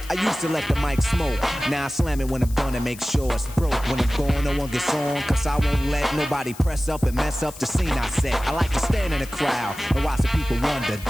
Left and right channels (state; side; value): noise; left; hiss, 17 dB below the sound